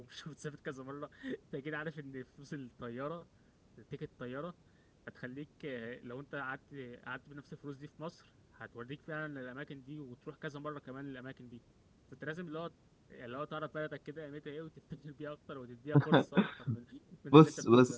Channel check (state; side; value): identical; both; correlation 1.00